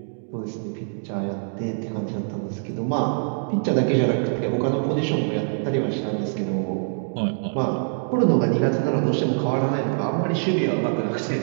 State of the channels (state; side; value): silent; left; digital silence